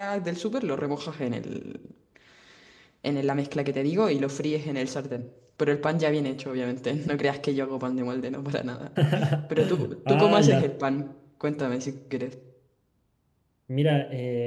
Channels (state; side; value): identical; both; correlation 1.00